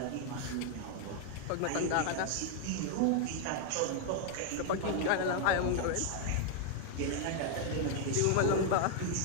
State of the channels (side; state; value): both; different; correlation 0.00